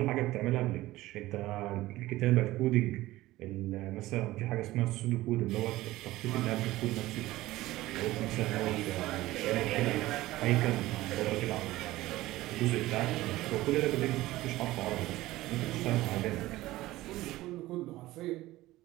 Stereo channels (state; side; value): quieter; left; 17.2 dB